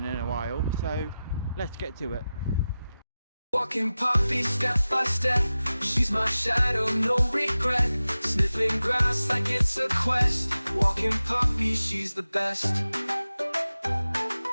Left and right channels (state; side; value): inverted; both; correlation -0.94